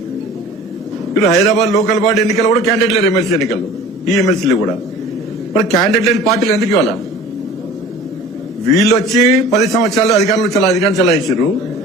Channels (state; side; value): normal; both; correlation 0.43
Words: వీళ్ళు హైదరాబాద్ లోకల్ బాడీ ఎన్నికల్లో కూడా క్యాండిడేట్ లేరు. ఎమ్మెల్సీ ఎన్నికల్లో ఈ ఎమ్మెల్సీలు కూడా మరి క్యాండిడేట్ లేని పార్టీలు ఎందుకు ఇవ్వాలా? వీళ్ళు వచ్చి 10 సంవత్సరాలు అధికారం చలాయించారు.